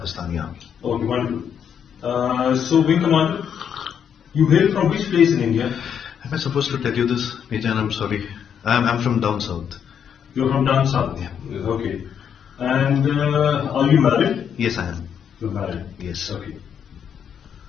army. Okay, wonderful. So, Wing Commander, you hail from which place in India? Am I supposed to tell you this, Major? I'm sorry. I'm from down south. You're from down south? Yeah. Okay. And are you married? Yes, I am. You're married? Yes. Okay.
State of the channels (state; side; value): quieter; right; 8.1 dB